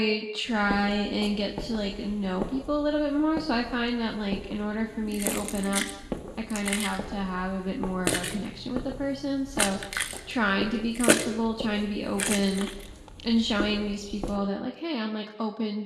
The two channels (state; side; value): identical; both; correlation 1.00